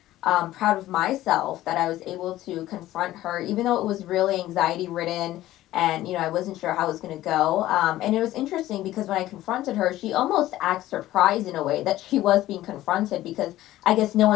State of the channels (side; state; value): right; quieter; 15.0 dB